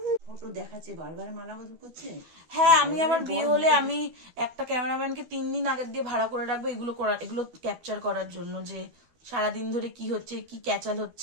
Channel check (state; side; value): late; left; 12 ms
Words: ফটো দেখাচ্ছে, বারবার মালা বদল করছে। হ্যাঁ আমি আবার বিয়ে হলে আমি একটা ক্যামেরাম্যানকে 3 দিন আগের দিয়ে ভাড়া করে রাখবো এগুলো ক্যাপচার করার জন্য, যে সারাদিন ধরে কি হচ্ছে, কি ক্যাচাল